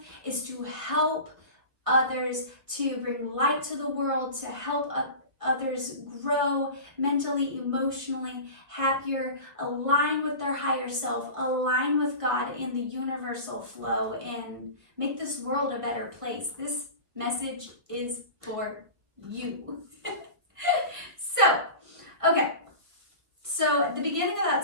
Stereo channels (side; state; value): left; late; 1.4 ms